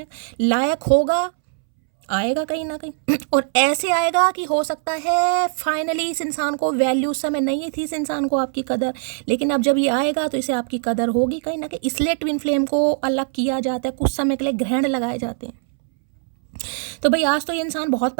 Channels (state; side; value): silent; left; 65 dB below the other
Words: लायक होगा, आएगा कहीं ना कहीं और ऐसे आएगा कि हो सकता है फाइनली इस इंसान को वैल्यू, उस समय नहीं थी इस इंसान को आपकी कदर, लेकिन अब जब ये आएगा तो इसे आपकी कदर होगी कहीं ना कहीं। इसलिए ट्विन फ्लेम को अलग किया जाता है, कुछ समय के लिए ग्रहण लगाए जाते हैं। तो भाई आज तो ये इंसान बहुत